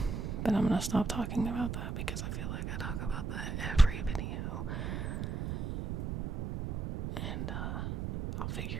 but I'm gonna stop talking about that because I feel like I talk about that every video, and I'll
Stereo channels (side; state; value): right; noise; rumble, 3 dB below the sound